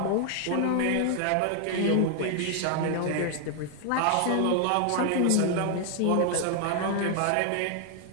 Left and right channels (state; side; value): different; both; correlation 0.00